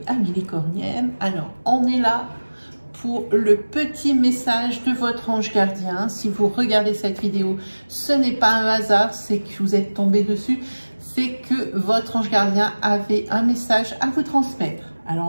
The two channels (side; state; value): both; inverted; correlation -1.00